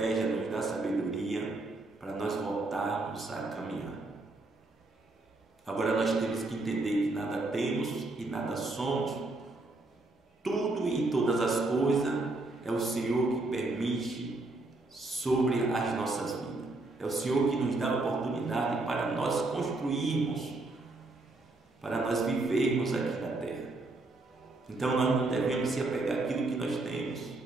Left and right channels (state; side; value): quieter; left; 3.0 dB